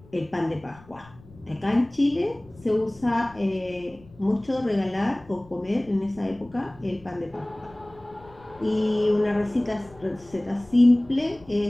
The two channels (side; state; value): left; noise; rumble, 24 dB below the sound